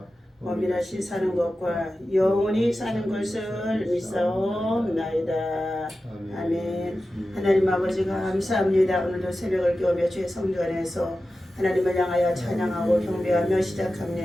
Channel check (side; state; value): both; normal; correlation 0.93